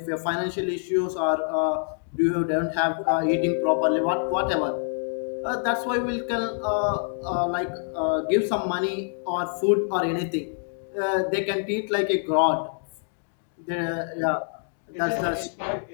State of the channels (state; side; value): silent; right; digital silence